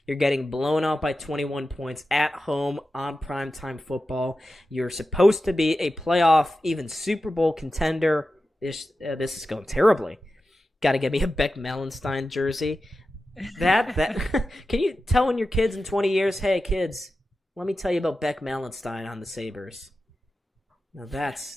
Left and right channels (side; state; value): both; normal; correlation 0.93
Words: You're getting blown out by 21 points at home on primetime football. You're supposed to be a playoff, even Super Bowl contender. This is going terribly. Got to get me a Beck Malenstein jersey. That Can you tell your kids in 20 years, hey kids, let me tell you about Beck Malenstein on the Sabres. Now